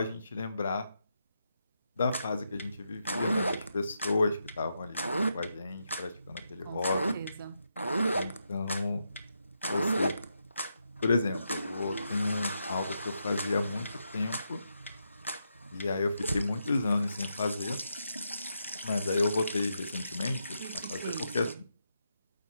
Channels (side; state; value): both; inverted; correlation -0.83